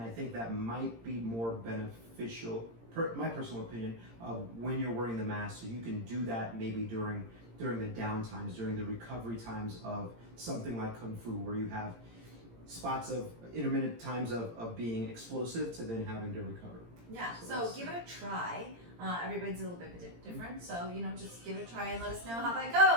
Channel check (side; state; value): left; late; 17 ms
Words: I think that might be more beneficial, my personal opinion, of when you're wearing the mask. So you can do that maybe during the down times, during the recovery times of something like Kung Fu, where you have spots of intermittent times of being explosive to then having to recover. Yeah, so give it a try. Everybody's a little bit different, so just give it a try and let us know how that